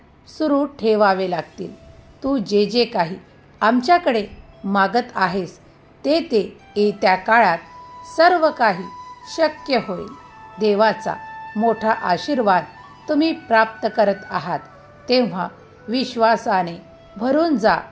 सुरू ठेवावे लागतील. तू जे जे काही आमच्याकडे मागत आहेस ते ते येत्या काळात सर्व काही शक्य होईल. देवाचा मोठा आशीर्वाद तुम्ही प्राप्त करत आहात, तेव्हा विश्वासाने भरून जा,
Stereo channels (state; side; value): identical; both; correlation 1.00